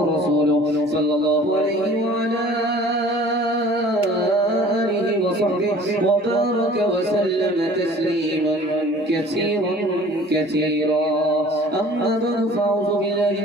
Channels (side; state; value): both; normal; correlation 0.49